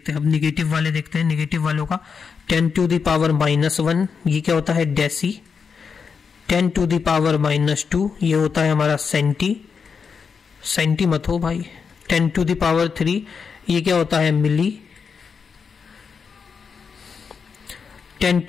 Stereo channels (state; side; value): quieter; right; 5.9 dB